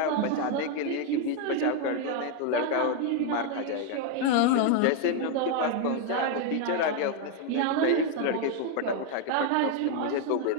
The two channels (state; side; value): different; both; correlation 0.01